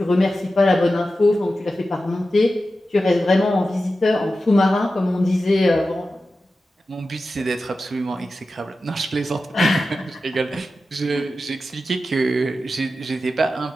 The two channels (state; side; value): normal; both; correlation 0.92